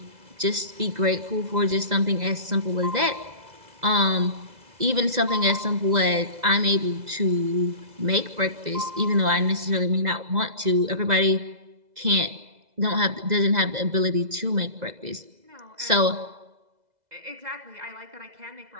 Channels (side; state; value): left; late; 2.0 ms